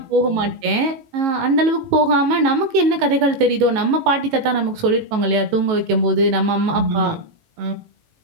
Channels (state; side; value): late; left; 18 ms